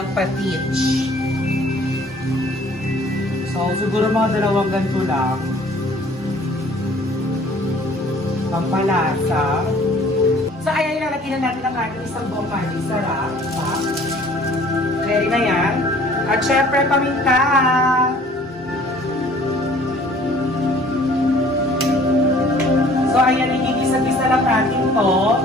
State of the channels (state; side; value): normal; both; correlation 0.53